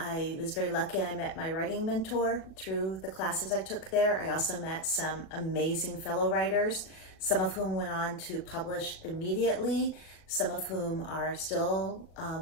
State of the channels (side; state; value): right; late; 38 ms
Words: was very lucky and I met my writing mentor through the classes I took there. I also met some amazing fellow writers, some of whom went on to publish immediately, some of whom are still